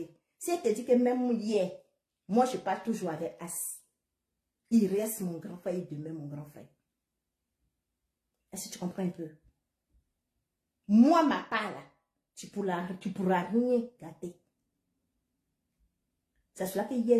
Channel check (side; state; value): both; identical; correlation 1.00